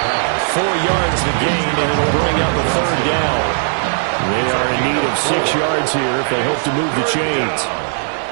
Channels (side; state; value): left; silent; digital silence